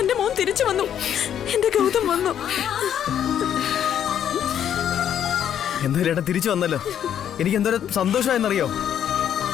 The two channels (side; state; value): right; quieter; 9.6 dB